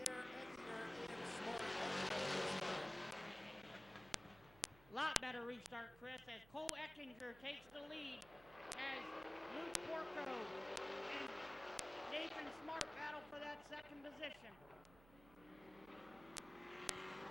air, Eckinger and Smart. Lot better restart, Chris, as Cole Eckinger takes the lead as Luke Porco and Nathan Smart battle for that second position.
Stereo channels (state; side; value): noise; right; hum, 21 dB below the sound